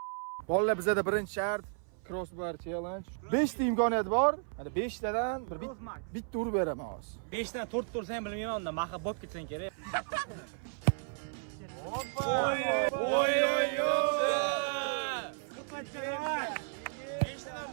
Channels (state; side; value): silent; left; 55 dB below the other